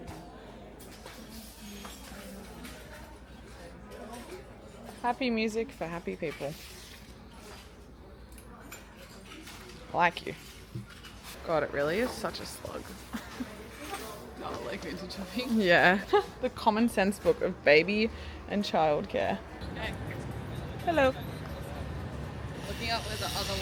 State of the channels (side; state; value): both; identical; correlation 1.00